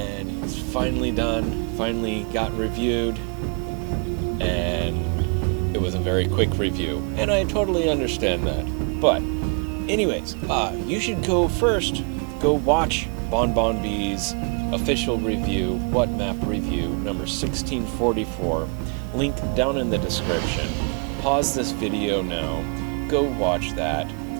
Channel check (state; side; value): quieter; left; 38.7 dB